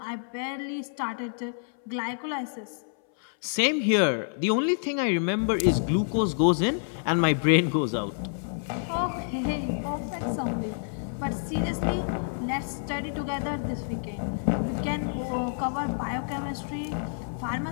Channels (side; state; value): right; silent; 59 dB below the other